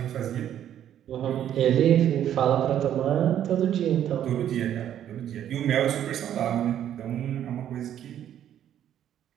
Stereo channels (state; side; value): quieter; left; 10.6 dB